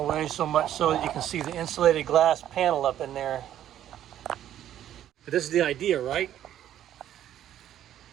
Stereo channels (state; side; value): quieter; left; 11.4 dB